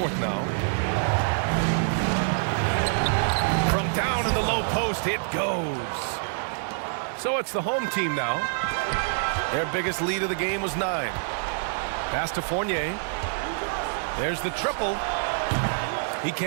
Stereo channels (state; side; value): silent; left; digital silence